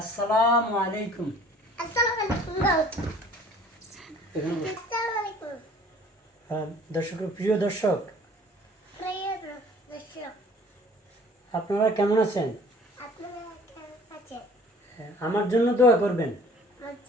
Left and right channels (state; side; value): normal; both; correlation 0.52